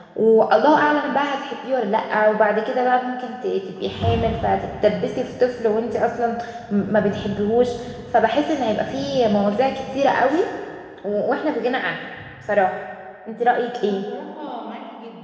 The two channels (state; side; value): identical; both; correlation 1.00